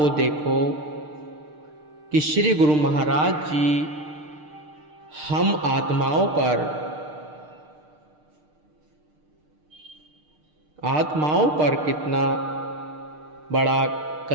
देखो कि श्री गुरु महाराज जी हम आत्माओं पर कितना बड़ा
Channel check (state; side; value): late; left; 6.6 ms